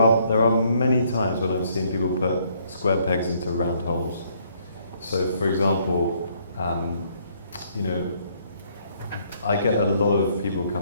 many times when I've seen people put square pegs into round holes. So, for example, I get a lot of people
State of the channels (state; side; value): inverted; both; correlation -0.68